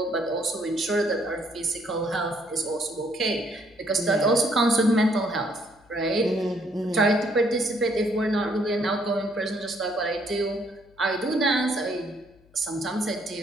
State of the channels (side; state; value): left; noise; hum, 30 dB below the sound